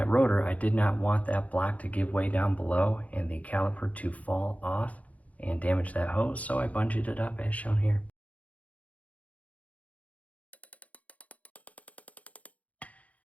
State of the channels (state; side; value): late; right; 0.069 ms